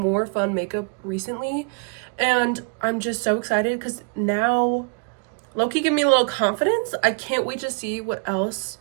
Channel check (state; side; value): quieter; left; 35.3 dB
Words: fun makeup recently. And I'm just so excited because now Loki gave me a little confidence. I can't wait to see what else